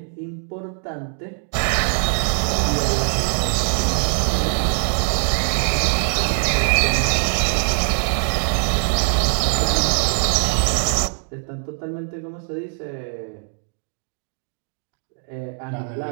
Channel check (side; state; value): left; silent; 56 dB below the other